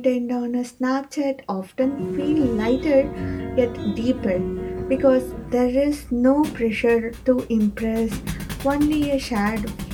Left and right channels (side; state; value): both; identical; correlation 1.00